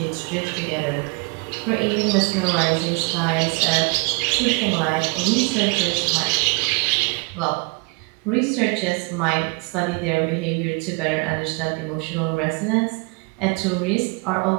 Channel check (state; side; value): quieter; left; 30.4 dB